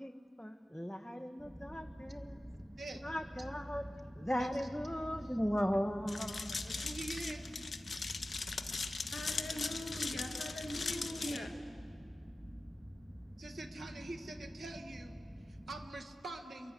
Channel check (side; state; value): both; normal; correlation 0.95